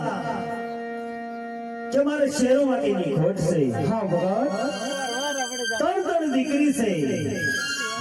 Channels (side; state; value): both; identical; correlation 1.00